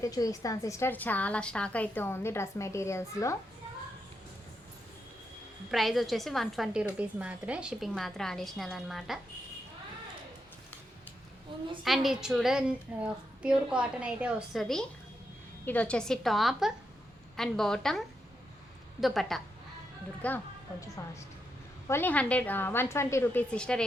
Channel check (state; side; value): normal; both; correlation 0.83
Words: చూపిస్తాను సిస్టర్. చాలా స్టాక్ అయితే ఉంది డ్రెస్ మెటీరియల్స్లో. ప్రైస్ వచ్చేసి 120 రూపీస్ మాత్రమే, షిప్పింగ్ మాత్రం అడిషనల్ అనమాట. అండ్ ఇది చూడ ప్యూర్ కాటన్ అయితే వస్తుంది. ఇది వచ్చేసి top and bottom, dupatta. Durga కొంచెం ఫాస్ట్. Only 120 rupees sister. ఏ